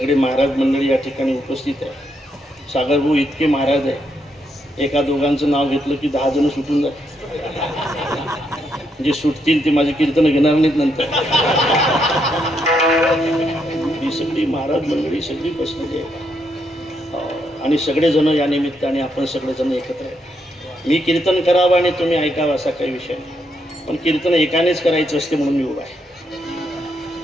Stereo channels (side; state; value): both; normal; correlation 0.78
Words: महाराज मंडळी या ठिकाणी उपस्थित आहे. सागरभाऊ इतके महाराज आहे, एका दोघांचं नाव घेतलं की 10 जण सुटून जातात. जे सुटतील ते माझे कीर्तन घेणार नाहीत नंतर. ही सगळी महाराज मंडळी सगळी बसलेली आहे आणि सगळेजण या निमित्ताने आपण सगळेजण एकत्र आहे. मी कीर्तन करावं आणि तुम्ही ऐकावं असा काही विषय नाही, पण कीर्तन एकानेच करायचं असते म्हणून मी उभा आहे.